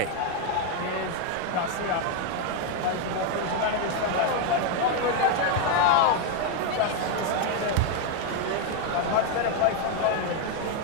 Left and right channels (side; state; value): both; different; correlation 0.01